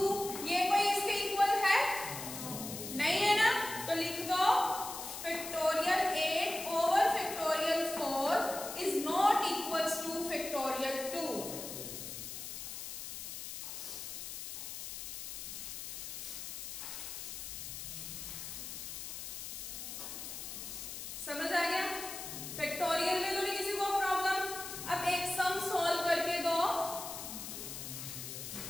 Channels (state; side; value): noise; left; hiss, 7 dB below the sound